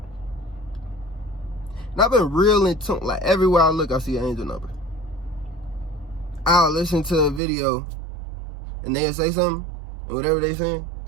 And I've been real in tune. Like everywhere I look, I see an angel number. I'll listen to a video and they'll say something, and whatever they're saying,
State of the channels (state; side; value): drops out; left; at 7.4 s